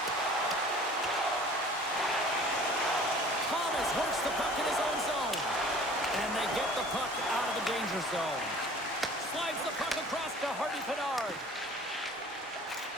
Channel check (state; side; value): normal; both; correlation 0.47